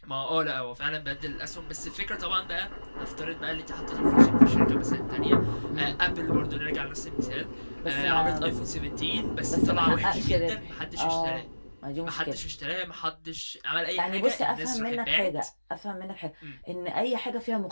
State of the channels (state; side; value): inverted; both; correlation -1.00